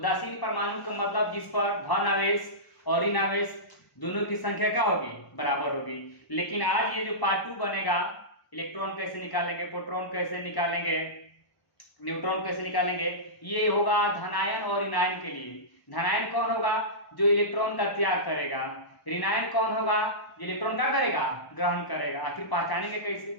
परमाणु का मतलब जिस पर धन आवेश और ऋण आवेश दोनों की संख्या क्या होगी, बराबर होगी। लेकिन आज ये जो पार्ट 2 बनेगा, इलेक्ट्रॉन कैसे निकालेंगे, प्रोटॉन कैसे निकालेंगे, न्यूट्रॉन कैसे निकालेंगे, ये होगा धनायन और ऋणायन के लिए। धनायन कौन होगा? जो इलेक्ट्रॉन का त्याग करेगा। ऋणायन कौन होगा? जो इलेक्ट्रॉन का करेगा, ग्रहण करेगा। आखिर पहचानेंगे कैसे?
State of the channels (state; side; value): late; right; 1.1 ms